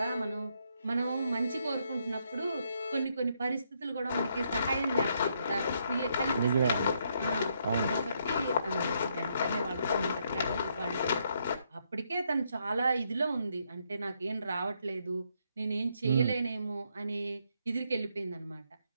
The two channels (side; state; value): both; inverted; correlation -0.75